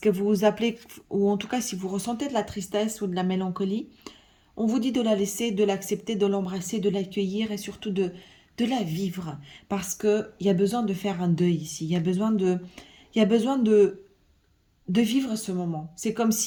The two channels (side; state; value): both; identical; correlation 1.00